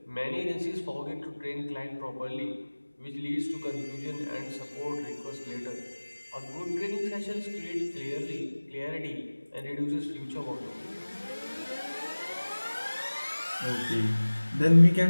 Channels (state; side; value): inverted; both; correlation -1.00